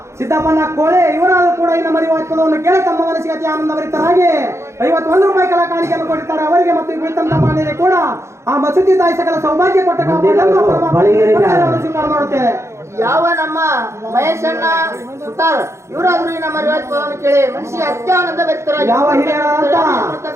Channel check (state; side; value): late; left; 0.13 ms